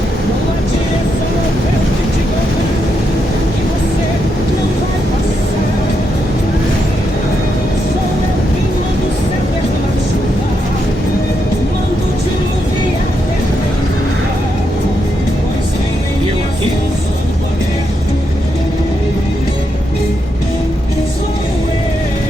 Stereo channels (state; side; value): normal; both; correlation 0.82